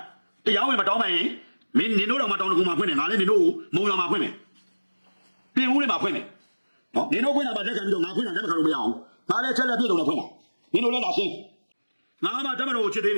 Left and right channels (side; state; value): both; inverted; correlation -1.00